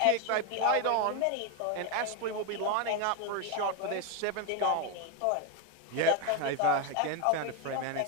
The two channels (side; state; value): both; different; correlation 0.01